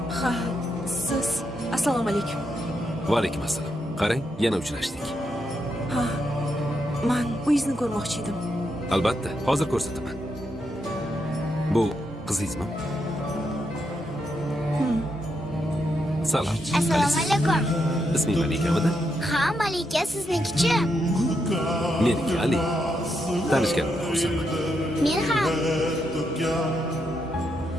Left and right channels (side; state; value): both; normal; correlation 0.81